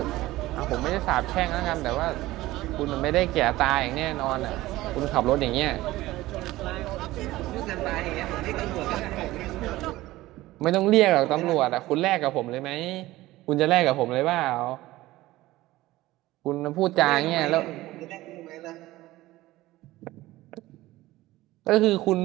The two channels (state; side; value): quieter; left; 17.4 dB